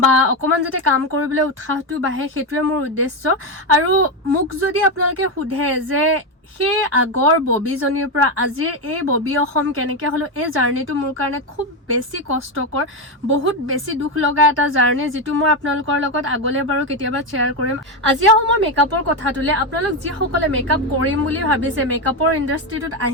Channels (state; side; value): normal; both; correlation 0.10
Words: বা অকণমান যাতে কাম কৰিবলৈ উৎসাহটো বাঢ়ে, সেইটোৱে মোৰ উদ্দেশ্য। আৰু মোক যদি আপোনালোকে সোধে যে সেই আগৰ ববিজনীৰ পৰা আজিৰ এই ববি অসম কেনেকৈ হ'লো, এই জাৰ্ণিটো মোৰ কাৰণে খুব বেছি কষ্টকৰ, বহুত বেছি দুখ লগা এটা জাৰ্ণি, যিটো মই আপোনালোকৰ লগত আগলৈ বাৰু কেতিয়াবা শ্বেয়াৰ কৰিম। আজি আহোঁ মই মেকআপৰ কথাটোলৈ। আপোনালোক যিসকলে মেকআপ কৰিম বুলি ভাবিছে, মেকআপৰ ইণ্ডাষ্ট্ৰিটোত